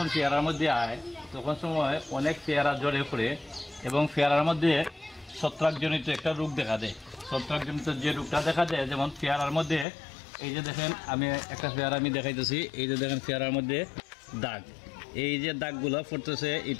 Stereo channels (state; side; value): drops out; right; at 9.9 s